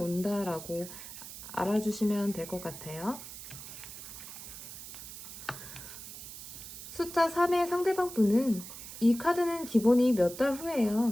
알아주시면 될 것 같아요. 숫자 3의 상대방 분은 이 카드는 기본이 몇 달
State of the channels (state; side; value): noise; right; hiss, 12 dB below the sound